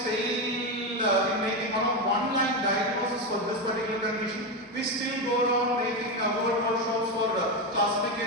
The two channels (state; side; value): normal; both; correlation 0.12